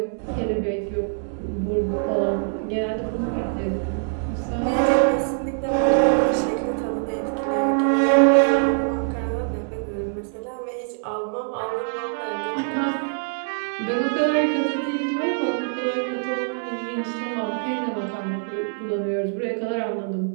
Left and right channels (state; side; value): silent; left; digital silence